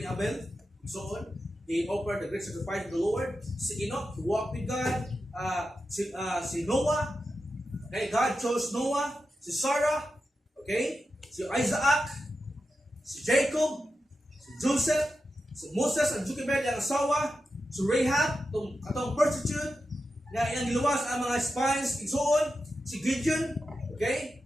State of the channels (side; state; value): both; normal; correlation 0.90